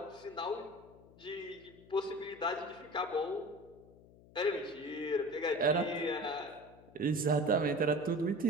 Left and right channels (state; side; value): noise; left; hum, 23 dB below the sound